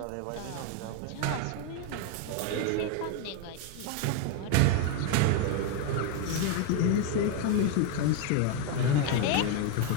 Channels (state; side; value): different; both; correlation 0.01